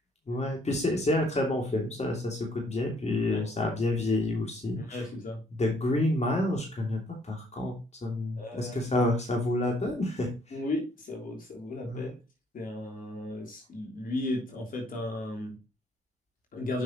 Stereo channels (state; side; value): normal; both; correlation 0.65